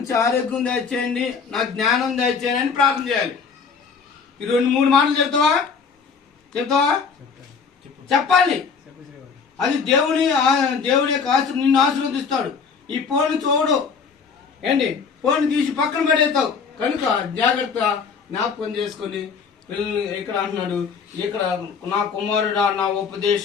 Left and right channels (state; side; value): quieter; right; 5.7 dB